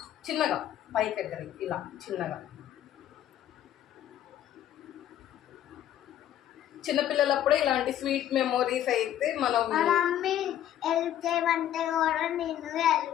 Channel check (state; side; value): quieter; right; 11.3 dB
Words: చిన్నగా పైకి ఎక్కడికి ఇలా చిన్నగా. చిన్నపిల్లలప్పుడే ఇలాంటి స్వీట్ మెమోరీస్ అయితే మనం